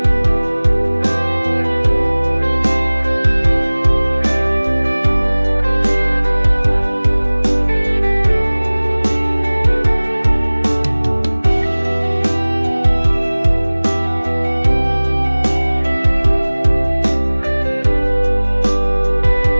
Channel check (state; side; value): inverted; both; correlation -1.00